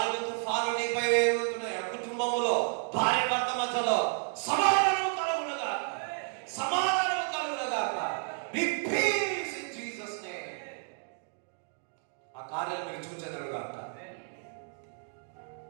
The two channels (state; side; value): silent; left; 55 dB below the other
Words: తుఫాను నీపై వేగుతున్నాయి, కుటుంబములో భార్య భర్త మధ్యలో సమాధానం కలుగునుగా, సమాధానం కలుగునుగా. Be peace in Jesus name. ఆ కార్యాలు మీరు చూచెదరుగా.